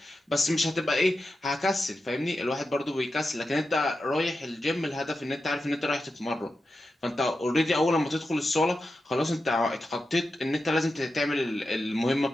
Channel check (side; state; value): both; normal; correlation 0.90